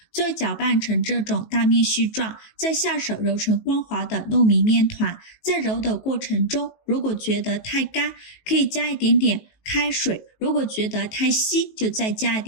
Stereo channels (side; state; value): right; late; 19 ms